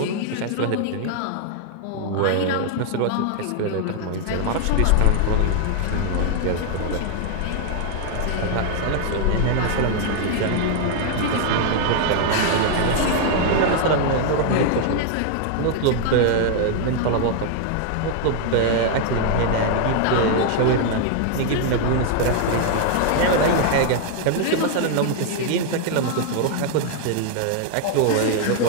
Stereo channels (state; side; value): different; both; correlation 0.00